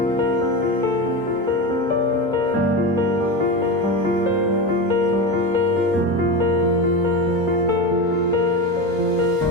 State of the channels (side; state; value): both; normal; correlation 0.20